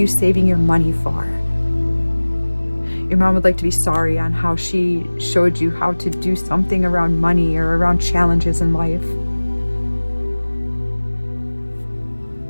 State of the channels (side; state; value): both; inverted; correlation -1.00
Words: saving your money for? Your mom would like to be sorry on how she showed you how to do something around money or around challenges in life.